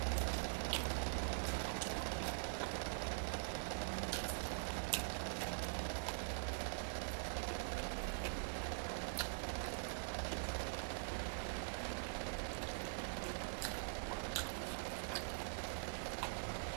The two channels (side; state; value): left; silent; digital silence